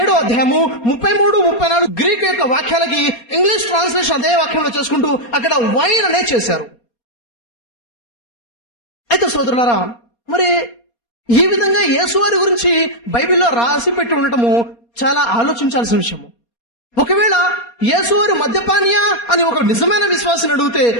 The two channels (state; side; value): late; right; 4.2 ms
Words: అధ్యాయము 33-34 గ్రీకు యొక్క వాక్యాలకి ఇంగ్లీష్ ట్రాన్స్లేషన్ అదే వాక్యంలో చేసుకుంటూ అక్కడ వైన్ అనే చేశారు. అయితే సోదరులారా, మరి ఈ విధంగా యేసువారి గురించి బైబిల్లో రాసి పెట్టి ఉండటము చాలా ఆలోచించాల్సిన విషయము. ఒకవేళ యేసువారు మద్యపానియా అని ఒక నిజమైన విశ్వాసిని అడిగితే,